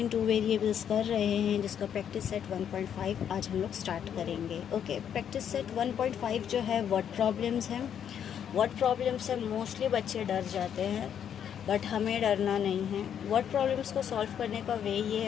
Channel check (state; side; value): quieter; right; 8.8 dB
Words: two variables कर रहे हैं, जिसका practice set 1.5 आज हम लोग स्टार्ट करेंगे। ओके, प्रैक्टिस सेट 1.5 जो है वर्ड प्रॉब्लम्स हैं। वर्ड प्रॉब्लम्स से मोस्टली बच्चे डर जाते हैं, बट हमें डरना नहीं है। वर्ड प्रॉब्लम्स को सॉल्व करने का वे ये